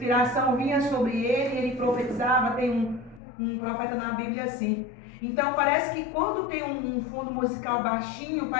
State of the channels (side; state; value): right; drops out; at 3.2 s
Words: vinha sobre ele e ele profetizava. Tem um profeta na Bíblia assim. Então parece que quando tem um fundo musical baixinho,